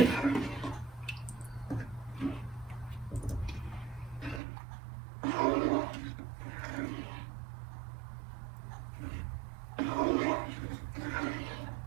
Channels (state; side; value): drops out; left; at 4.4 s